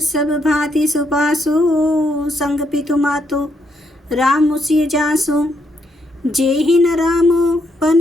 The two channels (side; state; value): both; normal; correlation 0.76